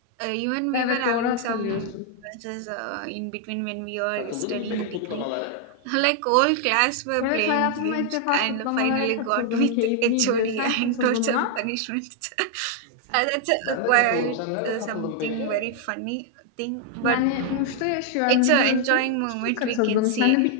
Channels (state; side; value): different; both; correlation 0.00